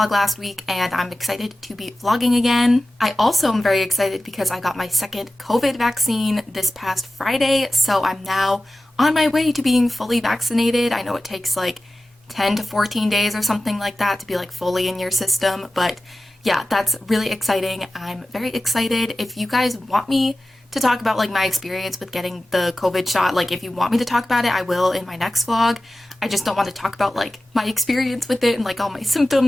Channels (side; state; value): both; normal; correlation 0.95